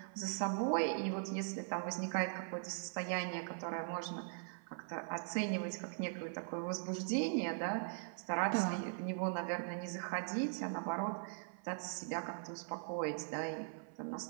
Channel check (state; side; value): silent; left; 51 dB below the other